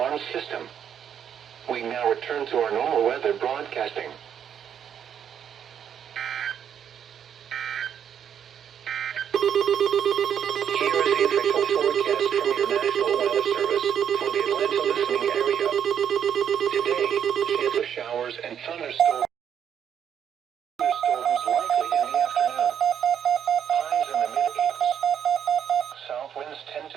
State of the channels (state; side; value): quieter; left; 8.7 dB